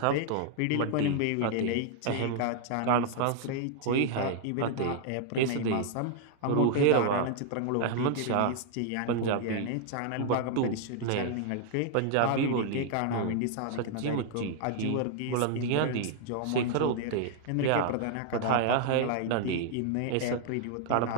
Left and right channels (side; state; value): both; different; correlation 0.00